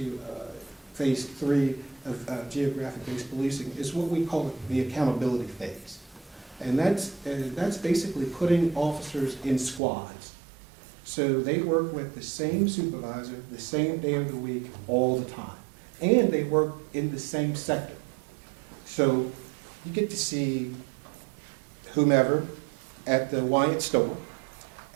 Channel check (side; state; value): left; drops out; at 9.8 s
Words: phase 3 of geographic-based policing, is what we call the accountability phase, and that's basically putting officers in squads. So they work with the same supervisor the same day of the week all the time, and they work in the same sector. So you get to see whomever at the Wyatt store,